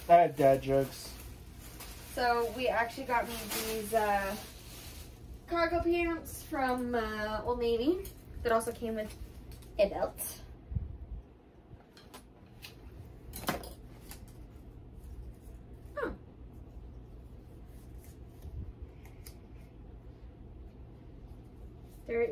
I had dad jokes. So we actually got me these cargo pants from Old Navy that also came with a belt. Oh. There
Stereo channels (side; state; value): both; identical; correlation 1.00